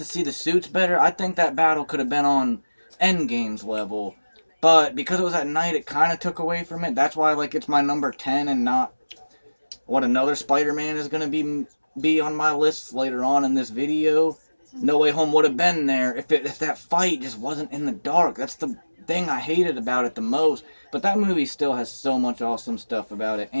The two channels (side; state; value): both; inverted; correlation -1.00